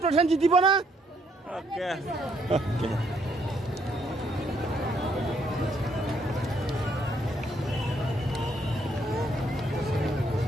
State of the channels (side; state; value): both; normal; correlation 0.71